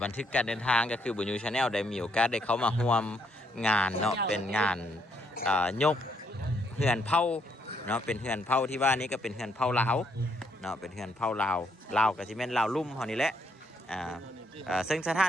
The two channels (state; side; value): normal; both; correlation 0.72